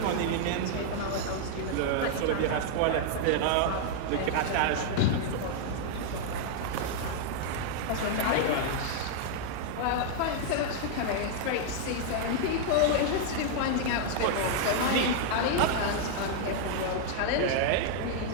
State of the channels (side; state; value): both; different; correlation -0.01